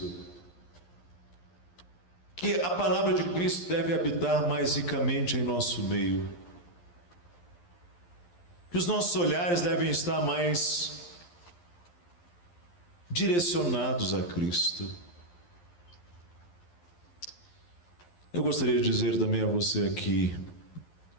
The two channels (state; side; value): late; right; 11 ms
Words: Que a palavra de Cristo deve habitar mais ricamente em nosso meio. Que os nossos olhares devem estar mais direcionados a Cristo. Eu gostaria de dizer também a você aqui,